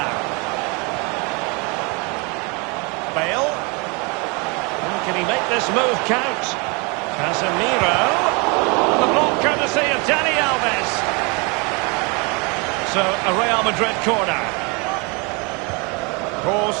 Bale. Can he make this move count? Casemiro. The block courtesy of Dani Alves. So a Real Madrid corner.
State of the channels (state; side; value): quieter; left; 30.5 dB